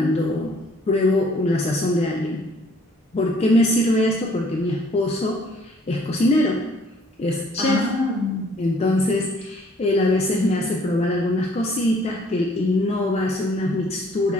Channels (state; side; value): normal; both; correlation 0.60